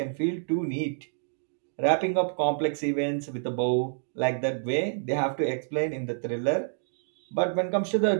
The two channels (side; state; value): left; silent; digital silence